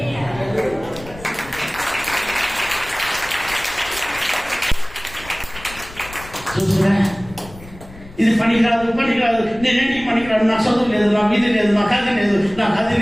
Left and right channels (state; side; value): noise; left; rumble, 18 dB below the sound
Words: చూస్తున్నా, ఇది పనికిరాదు, నేనేంటికి పనికిరాదు, నాకు చదువు లేదు, నాకు ఇది లేదు, నాకు అది లేదు, నాకు అది